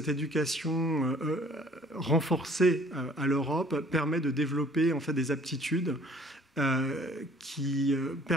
éducation renforcée à l'Europe permet de développer en fait des aptitudes qui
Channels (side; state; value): both; normal; correlation 0.55